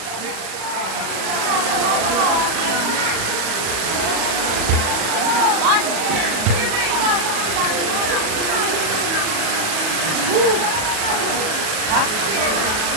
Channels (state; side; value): late; left; 37 ms